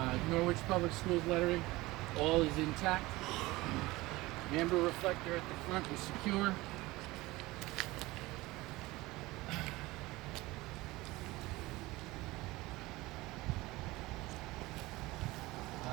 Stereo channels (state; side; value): quieter; left; 20.1 dB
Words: Norwich Public Schools lettering, all is intact. Amber reflector at the front is secure.